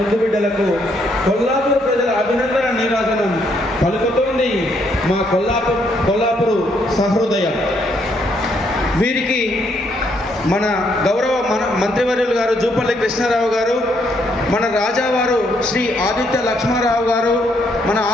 బిడ్డలకు కొల్లాపూర్ ప్రజల అభినందన నీరాజనం పలుకుతోంది మా కొల్లాపూరు సహృదయం. వీరికి మన గౌరవ మంత్రివర్యులు గారు జూపల్లి కృష్ణారావు గారు, మన రాజావారు శ్రీ ఆదిత్య లక్ష్మారావు గారు, మన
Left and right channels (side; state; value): both; normal; correlation 0.72